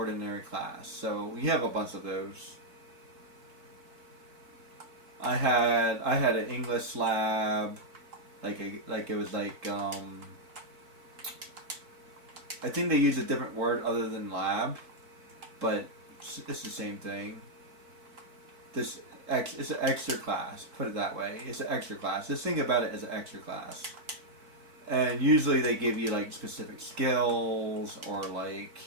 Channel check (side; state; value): left; late; 4.5 ms